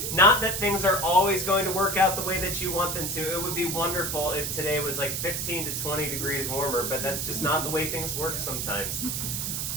Not that things are always going to work out the way that you want them to. It would be wonderful if today was like 15 to 20 degrees warmer, but that's just not the way things work sometimes.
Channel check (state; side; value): noise; right; hiss, 2 dB below the sound